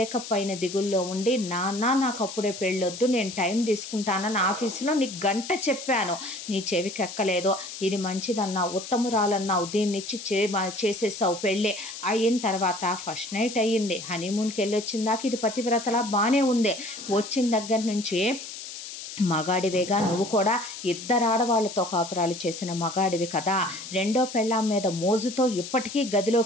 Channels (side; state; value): left; noise; hiss, 10 dB below the sound